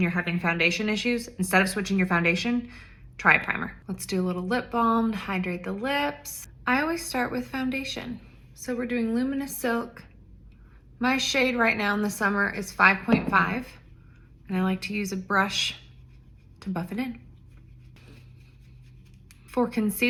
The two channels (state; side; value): identical; both; correlation 1.00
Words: you're having foundation issues, instead of switching your foundation, try a primer. Let's do a little lip balm to hydrate the lips. I always start with foundation. So we're doing Luminous Silk. My shade right now in the summer is 5.5, and I like to use a brush to buff it in. For